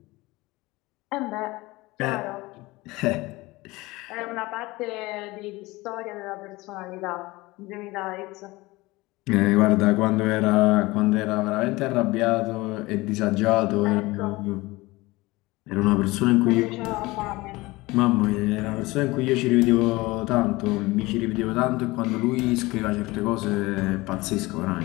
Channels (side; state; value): right; quieter; 21.2 dB